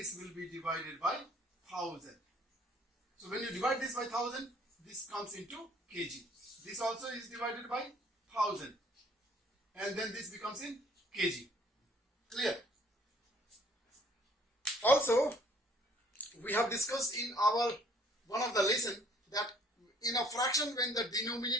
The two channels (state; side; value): normal; both; correlation 0.59